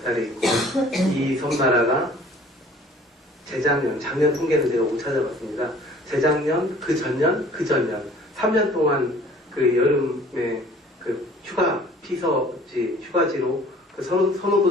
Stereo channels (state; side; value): normal; both; correlation 0.52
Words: 있고 이 섬나라가 작년 통계는 제가 못 찾아봤습니다. 재작년, 그 전년 3년 동안 그 여름에 그 휴가지로 그